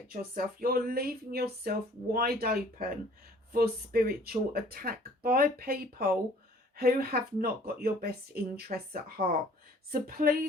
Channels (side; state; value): both; normal; correlation 0.54